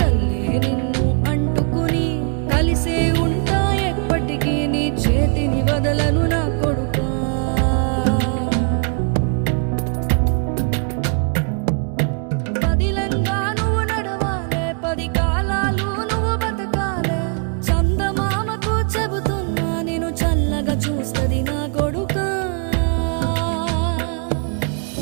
నిన్ను అంటుకుని కలిసే ఉంటా ఎప్పటికీ నీ చేతిని వదలను నా కొడుకా. పదిలంగా నువ్వు నడవాలే, 10 కాలాలు నువ్వు బతకాలే. చందమామకు చెబుతున్నా నేను చల్లగా చూస్తది నా కొడుకా.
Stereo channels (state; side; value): quieter; left; 39.1 dB